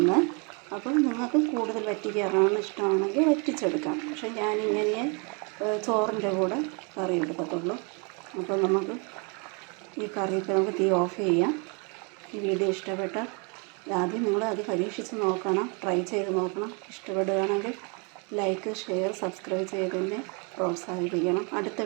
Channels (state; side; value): quieter; left; 34.3 dB